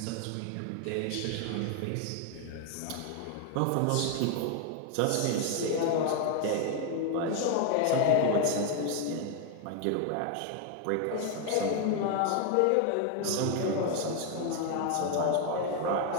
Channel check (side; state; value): both; different; correlation 0.01